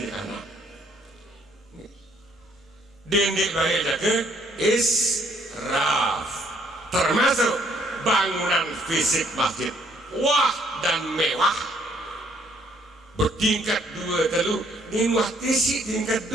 anak dendek bayi jaga israf termasuk bangunan fisik masjid wah dan mewah bertingkat 2 telu nimah tisi tingkat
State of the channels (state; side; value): normal; both; correlation 0.66